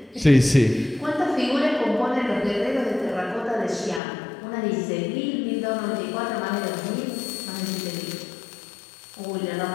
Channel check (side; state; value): right; drops out; at 4.0 s